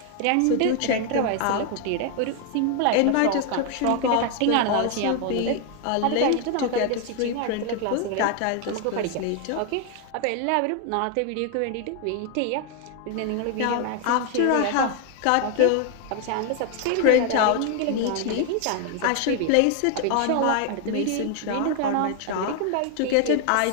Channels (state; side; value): different; both; correlation 0.00